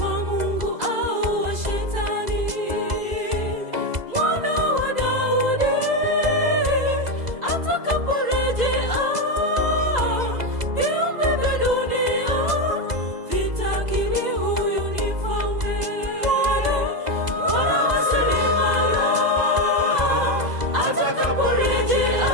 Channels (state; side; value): late; left; 2.0 ms